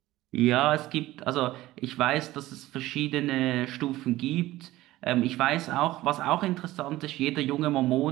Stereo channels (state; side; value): quieter; left; 16.7 dB